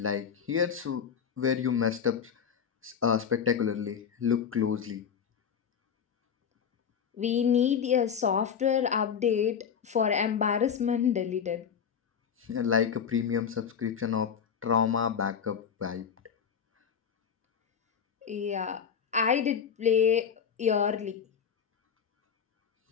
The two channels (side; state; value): right; quieter; 7.4 dB